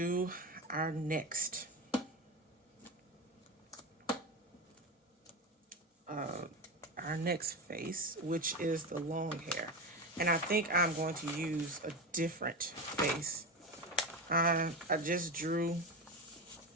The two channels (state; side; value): normal; both; correlation 0.20